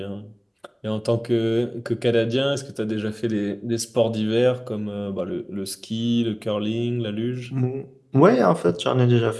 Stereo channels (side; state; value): both; identical; correlation 1.00